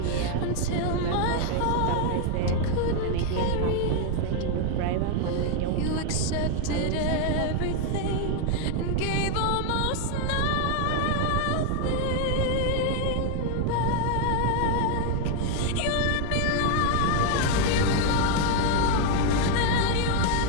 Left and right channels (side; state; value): both; different; correlation 0.00